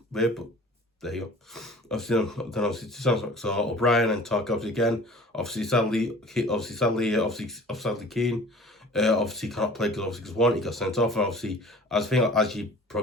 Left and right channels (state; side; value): normal; both; correlation 0.46